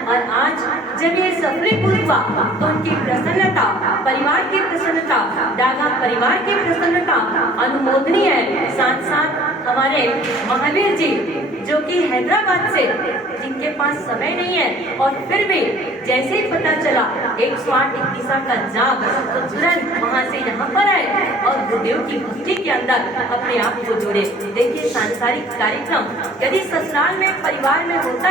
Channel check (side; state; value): both; normal; correlation 0.51